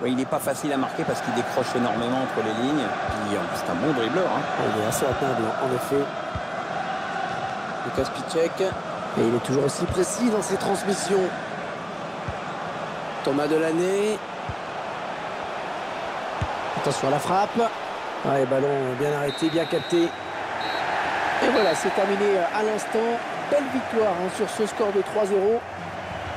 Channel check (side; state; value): both; identical; correlation 1.00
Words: Oui, il n'est pas facile à marquer parce qu'il décroche énormément entre les lignes. Puis c'est un bon dribbleur. Hein. Il est assez atteindre, en effet. Lucas Piszczek. Et il est toujours aussi précis dans ses transmissions. Thomas Delaney. Attention à la frappe. Ouais, ballon bien arrêté, bien capté. Et voilà, c'est terminé à l'instant. Belle victoire hein, sur ce score de 3-0.